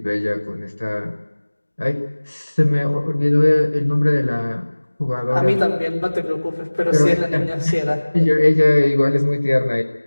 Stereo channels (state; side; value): inverted; both; correlation -1.00